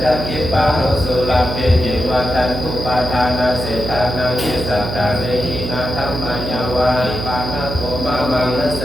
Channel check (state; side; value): noise; right; hum, 5 dB below the sound